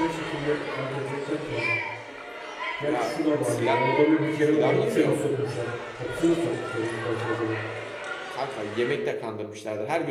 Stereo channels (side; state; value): both; identical; correlation 1.00